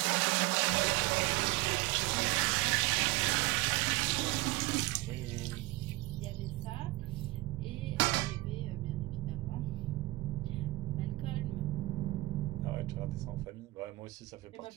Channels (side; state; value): left; quieter; 19.9 dB